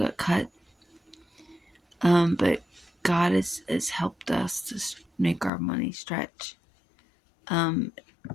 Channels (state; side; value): drops out; right; at 5.5 s